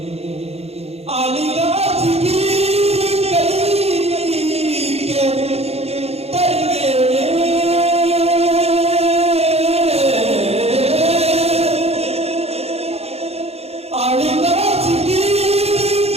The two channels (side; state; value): left; late; 0.30 ms